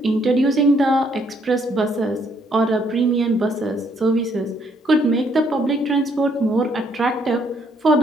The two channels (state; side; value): normal; both; correlation 0.69